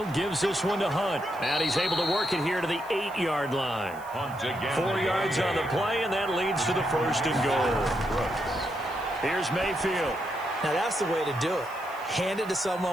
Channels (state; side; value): noise; right; hiss, 23 dB below the sound